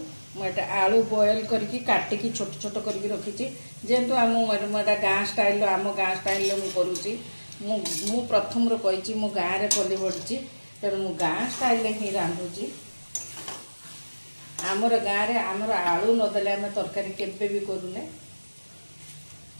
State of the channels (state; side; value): inverted; both; correlation -1.00